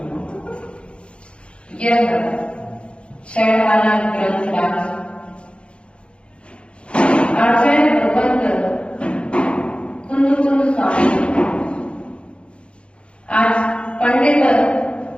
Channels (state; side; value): late; right; 0.058 ms